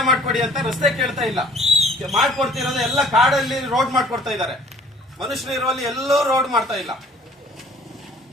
ಮಾಡ್ಕೊಡಿ ಅಂತ. ರಸ್ತೆ ಕೇಳ್ತಾ ಇಲ್ಲ, ಮಾಡ್ಕೊಡ್ತಿರೋದು ಎಲ್ಲ ಕಾಡಲ್ಲಿ ರೋಡ್ ಮಾಡ್ಕೊಡ್ತಾ ಇದ್ದಾರೆ. ಮನುಷ್ಯರು ಇರುವಲ್ಲಿ ಎಲ್ಲೂ ರೋಡ್ ಮಾಡ್ತಾ ಇಲ್ಲ.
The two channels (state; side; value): normal; both; correlation 0.53